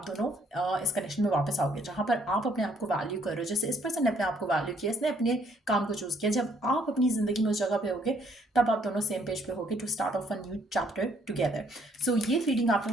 दोनों इस कनेक्शन में वापस आओगे, जहाँ पर आप अपने आप को वैल्यू कर रहे हो। जैसे इस पर्सन ने अपने आप को वैल्यू किया, इसने अपने काम को चूज किया। जब आप अपनी जिंदगी में उस जगह पे होगे तब आप दोनों सेम पेज पे होगे to start off a new chapter together. So ये रीडिंग आप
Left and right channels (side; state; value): both; normal; correlation 0.66